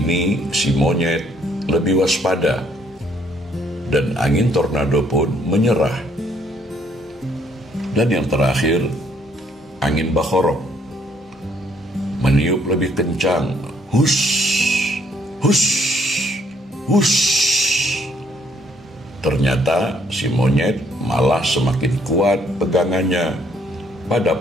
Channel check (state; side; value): normal; both; correlation 0.66